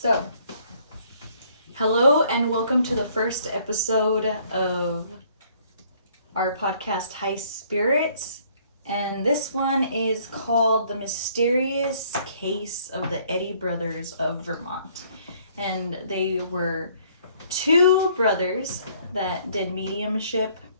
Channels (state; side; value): inverted; both; correlation -0.62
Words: So, hello and welcome to the first episode of our podcast, High.Spirits. And this one is called The Mysterious Case of the Eddy Brothers of Vermont. And they were two brothers that did mediumship.